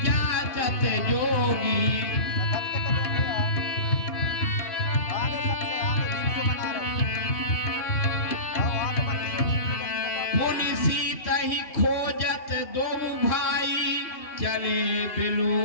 जाचत जोगी। पुनि सीता ही खोजत दो भाई, चले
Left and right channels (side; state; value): right; late; 2.8 ms